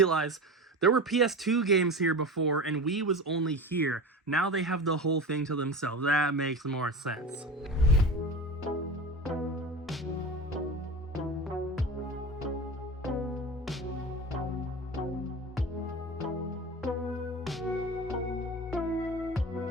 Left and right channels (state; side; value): normal; both; correlation 0.29